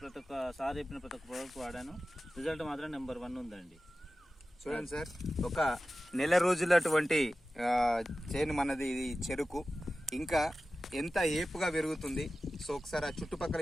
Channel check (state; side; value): normal; both; correlation 0.95